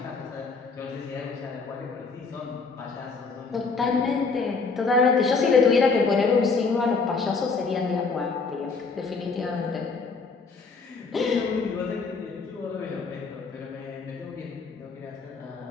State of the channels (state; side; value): quieter; right; 4.6 dB